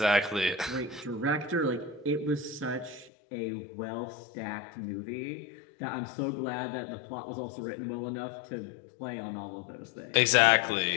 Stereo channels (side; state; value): right; drops out; at 3.1 s